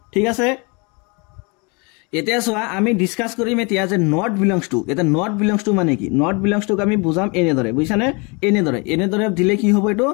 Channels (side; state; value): right; quieter; 30.5 dB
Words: ঠিক আছে এতিয়া চোৱা আমি ডিসকাস কৰিম এতিয়া যে নট বিলংস টু এটা নট বিলংস টু মানে কি নট বিলংস টু আমি বুজাম এনেদৰে বুজিছানে এনেদৰে দিলে কি হ'ব এটো